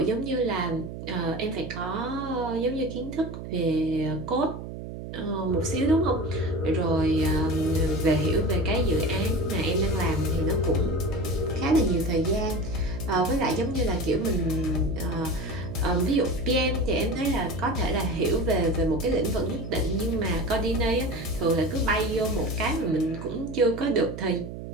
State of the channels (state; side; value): noise; right; hum, 9 dB below the sound